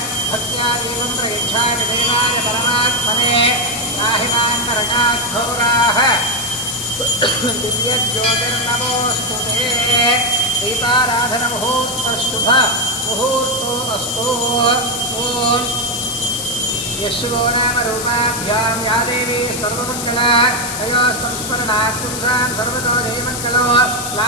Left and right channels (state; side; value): noise; left; hiss, 5 dB below the sound